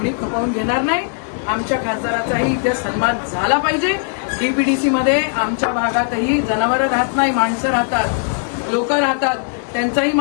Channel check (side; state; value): right; silent; digital silence